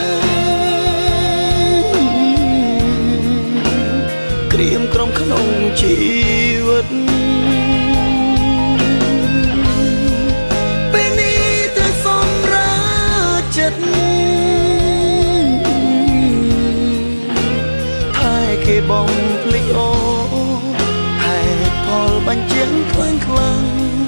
ក្រៀមក្រំក្នុងជីវិតពេលនេះត្រូវសម្រាប់ចិត្តថែគេបំភ្លេចអូហេតុផលបញ្ជាក់ខ្លាំង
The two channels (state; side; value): inverted; both; correlation -1.00